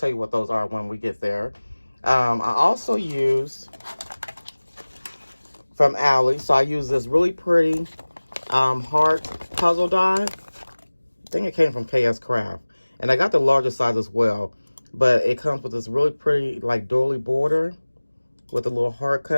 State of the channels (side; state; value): both; inverted; correlation -1.00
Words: you what those are when we get there. I also used from Allie. So I use this really pretty heart puzzle die. I think it came from KS Craft. And I got the larger size as well. But it comes with this really pretty like doily border with the little heart